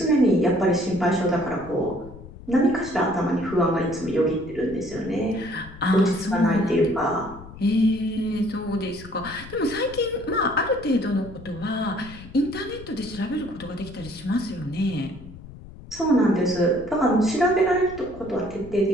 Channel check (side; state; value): left; noise; rumble, 16 dB below the sound